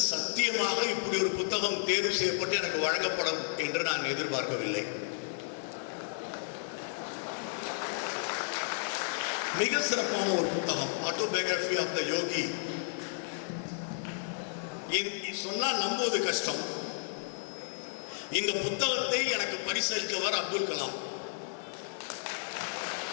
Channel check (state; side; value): silent; right; digital silence